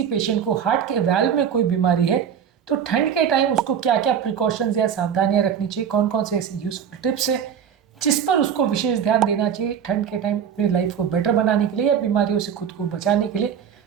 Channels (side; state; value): left; quieter; 8.2 dB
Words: पेशेंट को हार्ट के वाल्व में कोई बीमारी है तो ठंड के टाइम उसको क्या क्या प्रिकॉशंस या सावधानियां रखनी चाहिए, कौन कौन से ऐसे यूजफुल टिप्स है जिस पर उसको विशेष ध्यान देना चाहिए ठंड के टाइम अपनी लाइफ को बेटर बनाने के लिए या बीमारियों से खुद को बचाने के लिए,